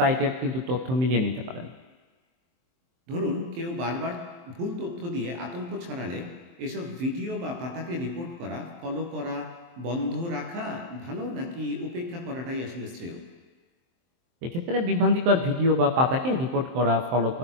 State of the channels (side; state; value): left; late; 23 ms